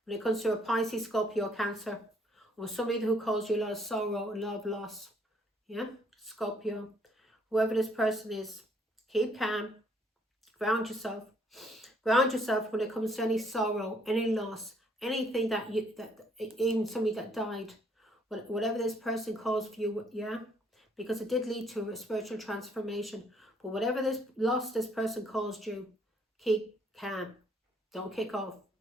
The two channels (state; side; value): normal; both; correlation 0.66